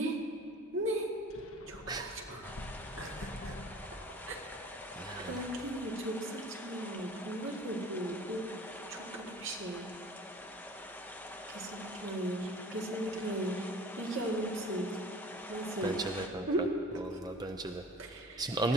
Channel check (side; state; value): both; normal; correlation 0.46